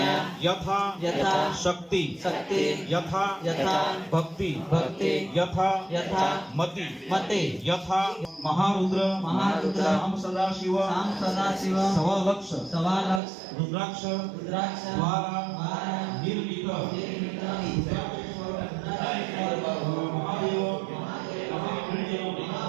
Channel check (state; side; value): drops out; left; at 13.2 s